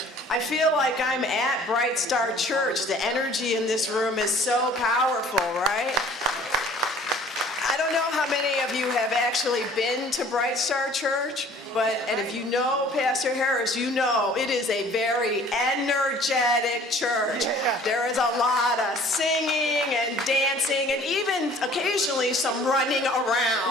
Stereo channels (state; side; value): normal; both; correlation 0.52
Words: I feel like I'm at Bright Star Church. The energy in this room is so powerful, right? I don't know how many of you have actually been to Bright Star Church, and if you know Pastor Harris, you know it is a very energetic church. There is a lot of singing and dancing and even occasionally some running